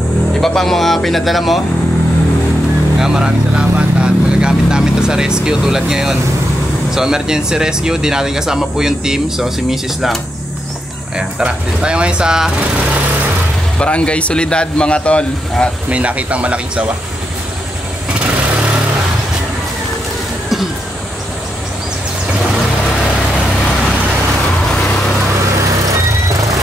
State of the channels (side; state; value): both; normal; correlation 0.83